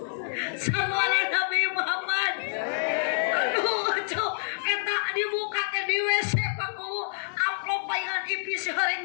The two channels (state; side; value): silent; right; digital silence